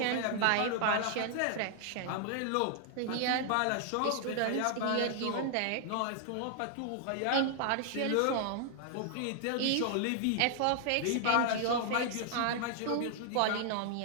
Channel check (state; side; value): different; both; correlation 0.00